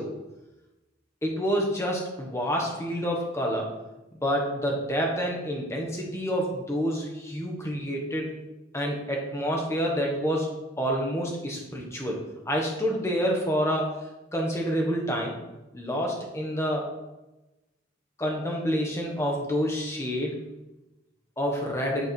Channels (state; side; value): normal; both; correlation 0.54